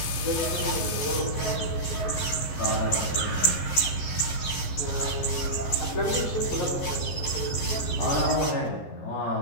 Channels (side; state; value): right; late; 14 ms